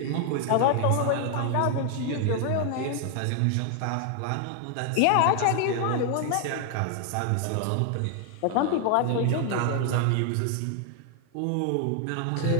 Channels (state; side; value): different; both; correlation 0.00